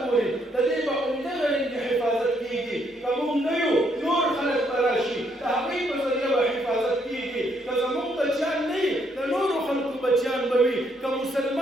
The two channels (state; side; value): normal; both; correlation 0.72